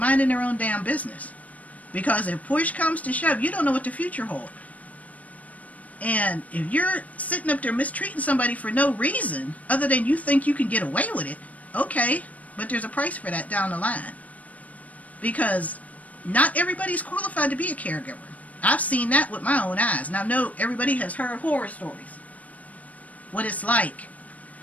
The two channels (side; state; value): right; late; 0.070 ms